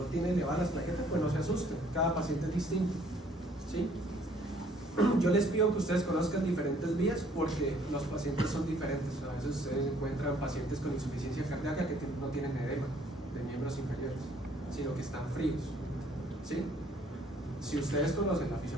tiene elevadas las plaquetas, pues no se asusten, cada paciente es distinto. ¿Sí? Yo les pido que ustedes conozcan diferentes vías porque los pacientes son diferentes. A veces ustedes encuentran pacientes con insuficiencia cardíaca que no tienen edema de miembros inferiores, sino que están fríos. ¿Sí? Si ustedes conocen la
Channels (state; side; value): normal; both; correlation 0.61